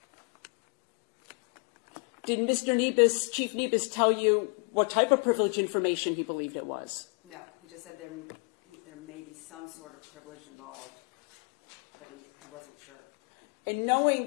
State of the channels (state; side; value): quieter; right; 37.7 dB